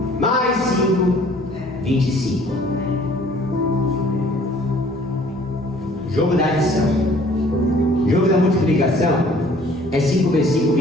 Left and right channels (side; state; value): both; normal; correlation 0.55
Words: mais 5, 25. Jogo da adição. Jogo da multiplicação é 5 vezes 5,